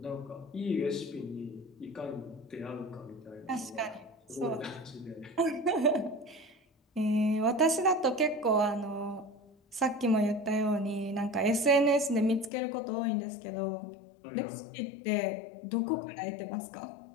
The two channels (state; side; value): drops out; right; at 12.5 s